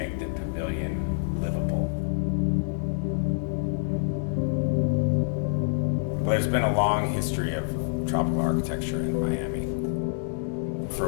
the pavilion livable? Well, there's been a long history of tropical architecture in Miami.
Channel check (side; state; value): right; silent; digital silence